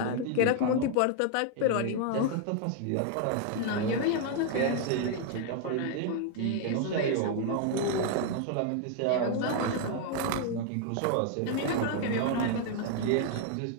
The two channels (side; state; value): both; different; correlation 0.00